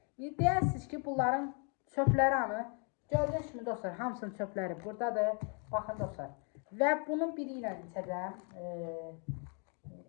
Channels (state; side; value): quieter; right; 38.7 dB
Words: Deyərsiniz ki bunların çöpləri anı. Gördüğünüz kimi dostlar, hamısının çöpləri buradadır. Baxın dostlar. Və bunun biri ilə içəcəm.